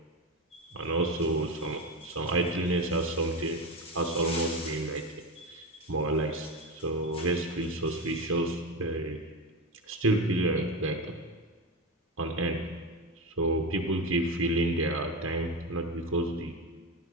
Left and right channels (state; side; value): normal; both; correlation 0.19